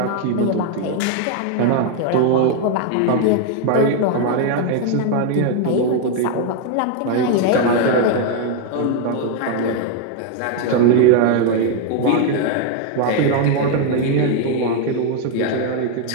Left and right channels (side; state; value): both; different; correlation 0.01